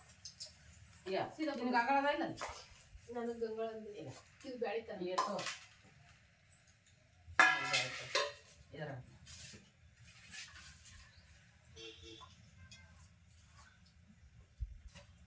ಯಾ ನಿನಗೆ ಅಂಗಳದ ಇಲ್ಲ ನನಗೆ ಗಂಗಳ ಇದು ಬೆಳಿತಾನೆ ಏಟೋ ಇದರ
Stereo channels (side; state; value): both; identical; correlation 1.00